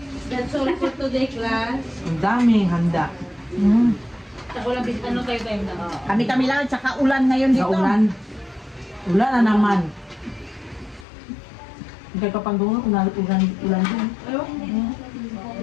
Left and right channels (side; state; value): right; drops out; at 11.1 s